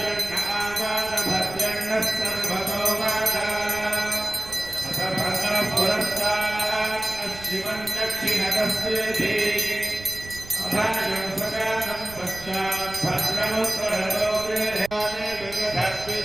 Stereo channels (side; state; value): right; noise; rumble, 16 dB below the sound